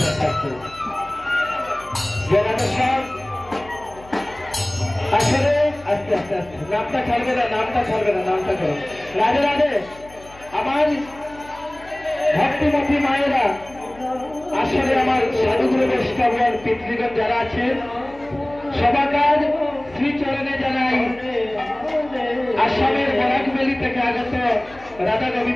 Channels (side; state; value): left; noise; hum, 22 dB below the sound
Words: আসলে আস্তে আস্তে আস্তে নামটা ছাড়বে না নামটা করো রাধে রাধে আমার ভক্তিমতী মায়েরা আসলে আমার সাধুগুরু বৈষ্ণবগণ পিতৃগণ যারা আছেন সবাকার শ্রীচরণে জানাই আসামের বরাকবেলি থেকে আগত রাধা